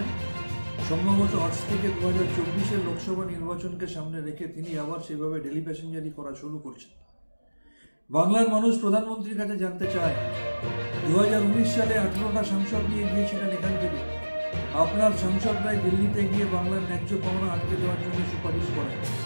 সম্ভবত আজ থেকে 2024-এর লোকসভা নির্বাচনকে সামনে রেখে তিনি আবার সেভাবে ডেলি প্যাসেঞ্জারি করা শুরু করছেন। বাংলার মানুষ প্রধানমন্ত্রীর কাছে জানতে চায়, 2019 সালে 18টা সাংসদ নিয়ে গিয়েছিলেন এখান থেকে। আপনার সাংসদরাই দিল্লিতে গিয়ে বাংলার ন্যায্য পাওনা আটকে দেওয়ার জন্য সুপারিশ করেন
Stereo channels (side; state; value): both; inverted; correlation -1.00